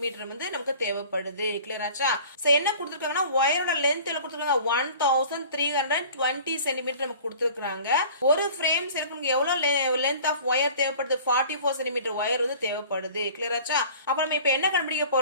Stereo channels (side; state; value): both; inverted; correlation -0.45